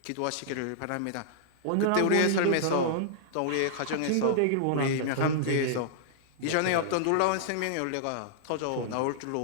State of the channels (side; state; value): both; different; correlation -0.01